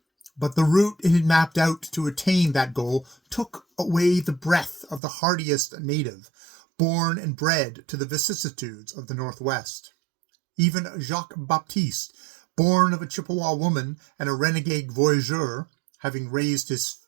But the route it had mapped out to attain that goal took away the breath of the hardiest native, born and bred to the vicissitudes of the Northwest. Even Jacques Baptiste, born of a Chippewa woman and a renegade voyageur, having raised his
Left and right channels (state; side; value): drops out; left; at 5.0 s